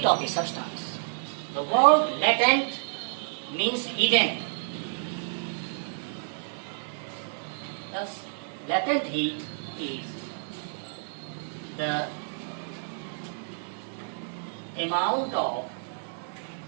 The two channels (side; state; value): left; silent; digital silence